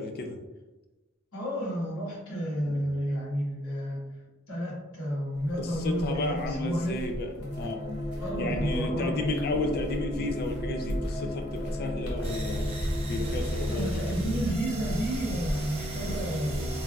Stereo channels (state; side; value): normal; both; correlation 0.68